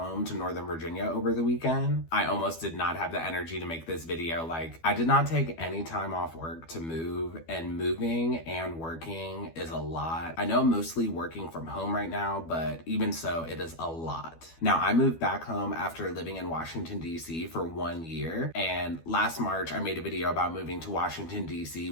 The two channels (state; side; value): late; right; 12 ms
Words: to Northern Virginia over the weekend. I almost did not have the energy to make this video. I did not take any time off work to move, and moving and working is a lot. I know I'm mostly working from home right now, but even so, it is a lot. Now, I moved back home after living in Washington, D.C. for 1 year, and last March, I made a video about moving to Washington, D.C.,